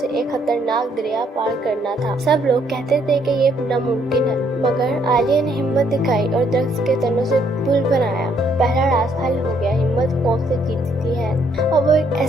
ایک خطرناک دریا پار کرنا تھا۔ سب لوگ کہتے تھے کہ یہ ناممکن ہے، مگر عالیہ نے ہمت دکھائی اور درخت کے تنوں سے پل بنایا۔ پہلا راز حل ہو گیا۔ ہمت خوف سے جیتتی ہے۔ اور وہ ایک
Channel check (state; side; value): normal; both; correlation 0.69